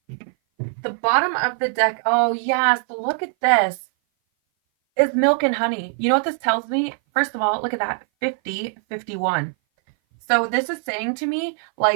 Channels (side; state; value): left; silent; 58 dB below the other